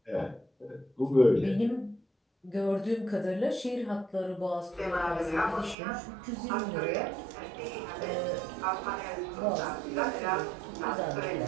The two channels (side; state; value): left; drops out; at 5.8 s